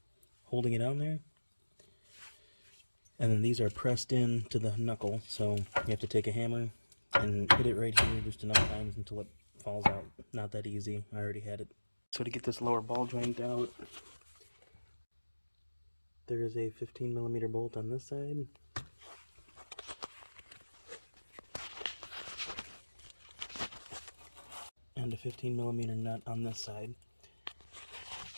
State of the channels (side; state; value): both; inverted; correlation -1.00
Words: holding it on there. And then these are pressed in to the knuckle, so you have to take a hammer and hit it right here just enough times until it falls out. Not that easy, I already had it. So to get this lower ball joint out, there is a 15mm bolt on this side. And a 15mm nut on this side.